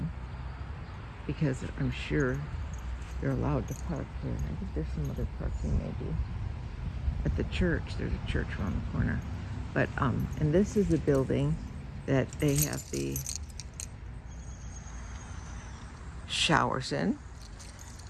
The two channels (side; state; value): both; identical; correlation 1.00